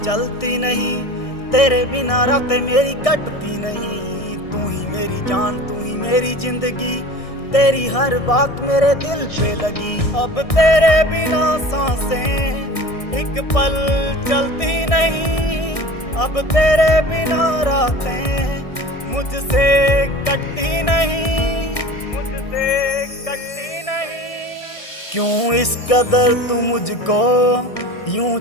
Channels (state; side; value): late; right; 1.6 ms